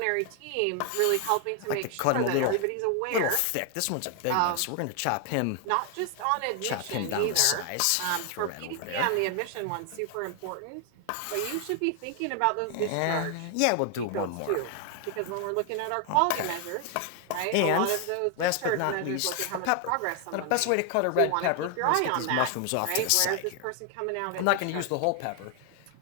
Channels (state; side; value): different; both; correlation 0.00